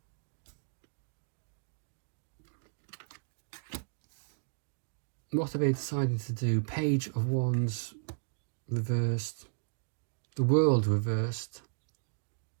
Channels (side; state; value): left; silent; digital silence